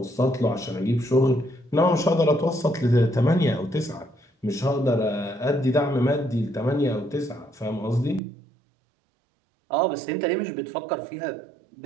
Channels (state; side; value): drops out; left; at 8.2 s